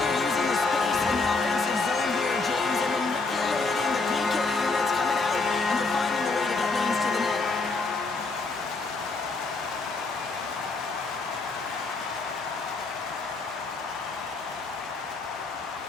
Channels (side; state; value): right; quieter; 3.8 dB